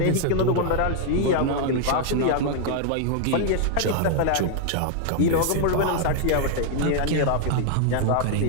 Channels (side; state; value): both; different; correlation -0.01